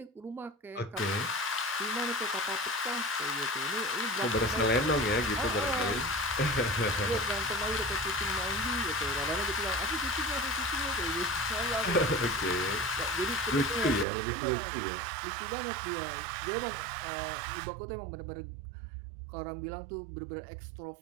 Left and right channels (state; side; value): drops out; left; at 14.1 s